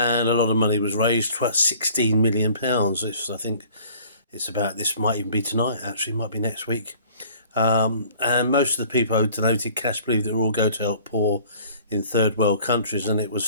a lot of money was raised, about £16 million. I think it's about, this might even be tonight, actually, might be next week. And most of the people who donated cash believed it would all go to help poor in third world countries, and it was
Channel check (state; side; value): inverted; both; correlation -0.51